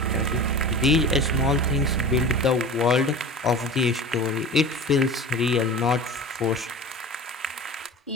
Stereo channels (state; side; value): normal; both; correlation 0.36